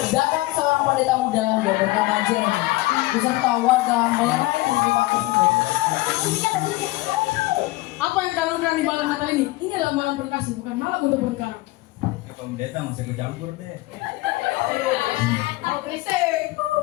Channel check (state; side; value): quieter; right; 20.0 dB